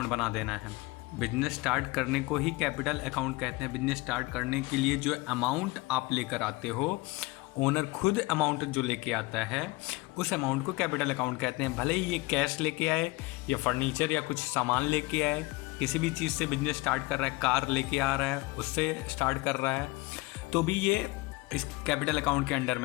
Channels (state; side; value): quieter; right; 22.7 dB